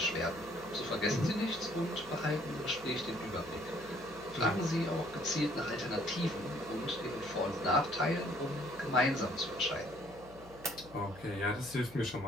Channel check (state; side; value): noise; left; hum, 20 dB below the sound